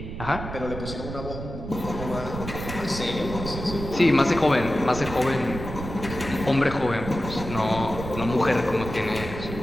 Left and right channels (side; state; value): right; noise; rumble, 8 dB below the sound